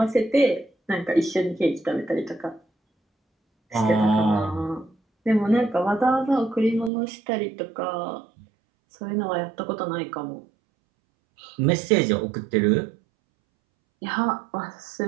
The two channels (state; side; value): drops out; left; at 6.9 s